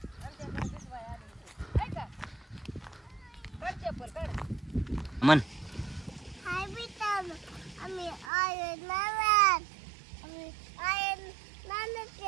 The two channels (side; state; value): left; drops out; at 8.3 s